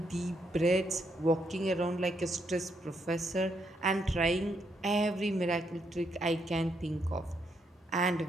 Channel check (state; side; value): normal; both; correlation 0.77